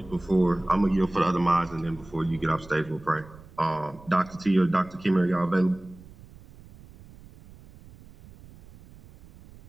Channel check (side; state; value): right; noise; rumble, 21 dB below the sound